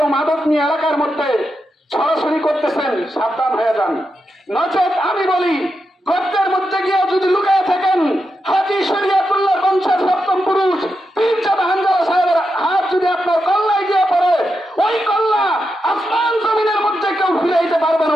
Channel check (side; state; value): both; normal; correlation 0.87